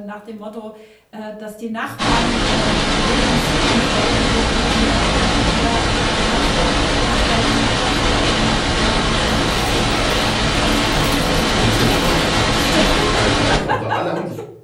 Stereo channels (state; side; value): identical; both; correlation 1.00